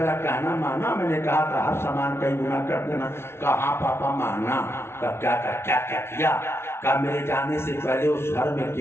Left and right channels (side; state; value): right; late; 0.12 ms